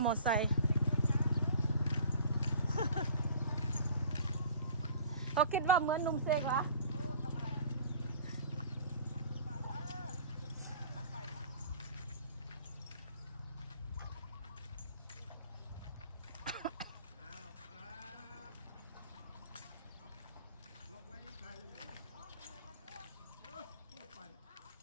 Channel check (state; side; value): inverted; both; correlation -0.47